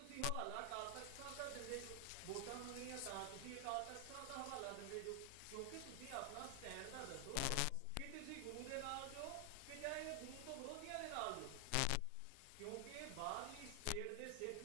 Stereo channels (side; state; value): both; different; correlation 0.00